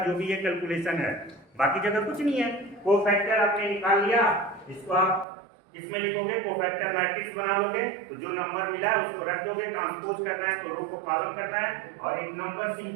जो भी है कैलकुलेशन है, बाकी जगह कुछ नहीं है। कोफैक्टर आपने निकाल लिया, इसको आप इसमें लिखोगे, कोफैक्टर मैट्रिक्स बना लोगे, तो जो नंबर मिला है उसको रख दोगे। ट्रांसपोज करना है तो रो को कॉलम करना है, और एक नंबर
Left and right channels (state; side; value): drops out; left; at 5.2 s